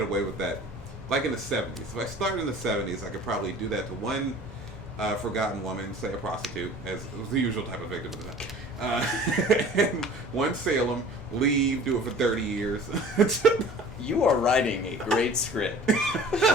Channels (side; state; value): both; normal; correlation 0.46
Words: away with that. Like in the 70s. If I started in the 70s, I could probably do that to one forgotten woman, say a prostitute, as was the usual type of victim at the time. And one Salem, leave, do it for 30 years. You are writing a great script,